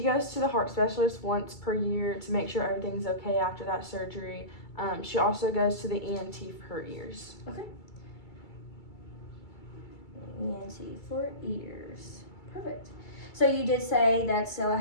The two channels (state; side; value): late; right; 2.3 ms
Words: goes to the heart specialist once per year to make sure everything's okay after that surgery. She also goes to the ENT for her ears. Okay. ENT for ears. Perfect. So you did say that Stella